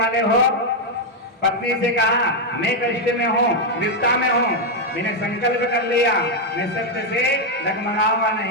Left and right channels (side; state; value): both; normal; correlation 0.01